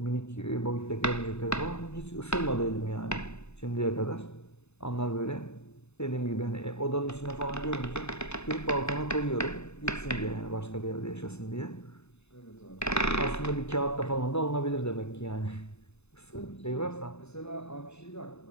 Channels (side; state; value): right; late; 0.80 ms